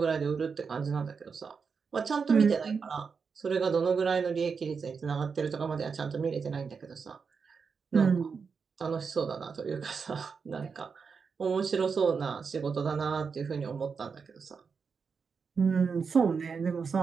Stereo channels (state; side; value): quieter; left; 5.6 dB